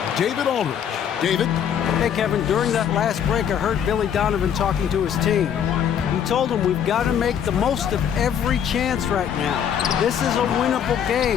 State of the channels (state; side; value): quieter; right; 8.7 dB